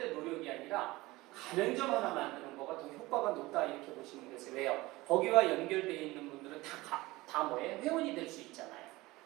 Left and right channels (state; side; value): quieter; left; 20.1 dB